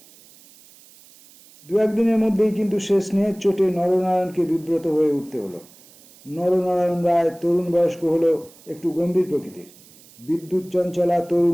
দু একদিনের মধ্যেই কিন্তু সে স্নেহের চোটে নরনারায়ণকে বিব্রত হয়ে উঠতে হলো। নরনারায়ণ রায় তরুণ বয়স্ক হলেও একটু গম্ভীর প্রকৃতির। বিদ্যুৎ চঞ্চলা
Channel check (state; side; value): noise; right; hiss, 25 dB below the sound